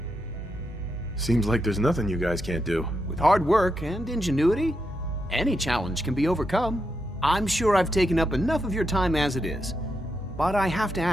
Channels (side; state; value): both; normal; correlation 0.83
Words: Seems like there's nothing you guys can't do. With hard work and ingenuity, any challenge can be overcome. I'm sure I've taken up enough of your time as it is, but I have to